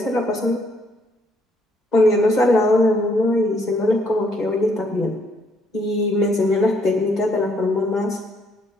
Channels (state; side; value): normal; both; correlation 0.69